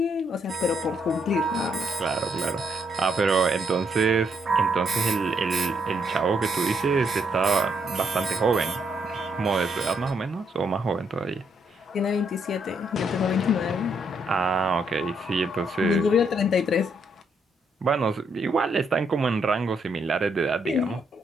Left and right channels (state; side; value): normal; both; correlation 0.75